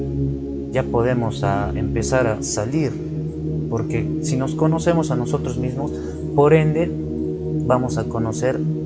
ya podemos empezar a salir, porque si nos conocemos a nosotros mismos, por ende vamos a conocer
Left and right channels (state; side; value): identical; both; correlation 1.00